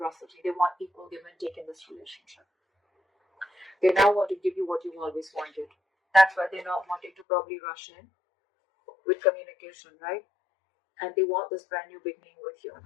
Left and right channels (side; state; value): right; drops out; at 7.2 s